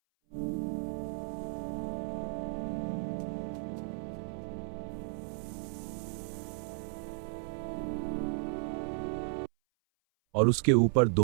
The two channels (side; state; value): left; silent; 55 dB below the other